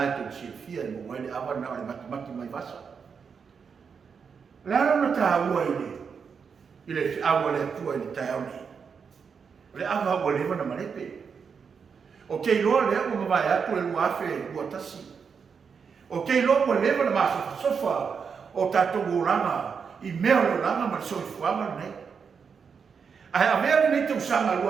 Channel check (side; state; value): left; quieter; 6.1 dB